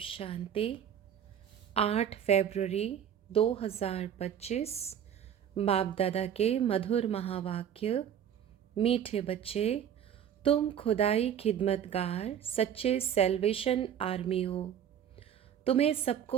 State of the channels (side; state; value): left; quieter; 9.3 dB